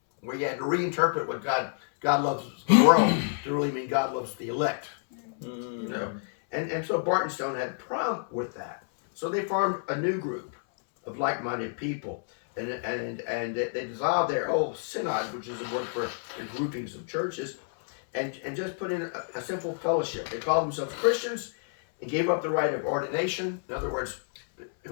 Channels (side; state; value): right; silent; 59 dB below the other